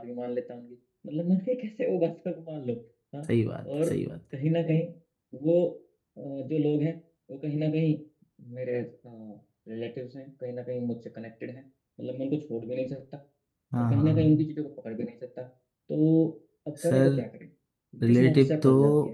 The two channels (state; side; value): identical; both; correlation 1.00